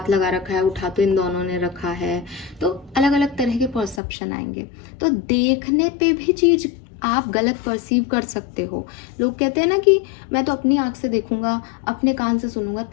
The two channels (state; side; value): drops out; right; at 4.0 s